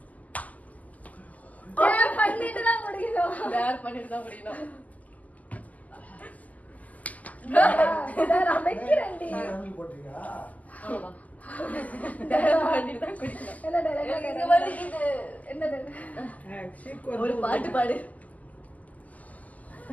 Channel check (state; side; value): late; right; 0.076 ms